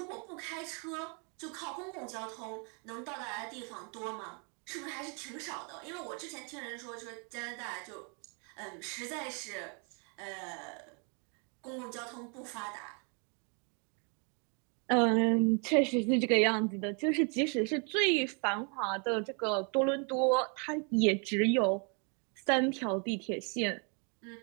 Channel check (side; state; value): left; quieter; 36.7 dB